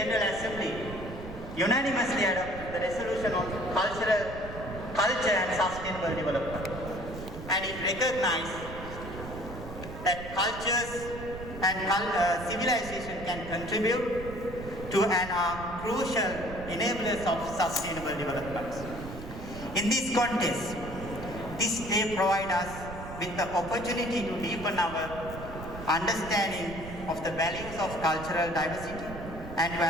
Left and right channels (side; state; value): right; noise; rumble, 11 dB below the sound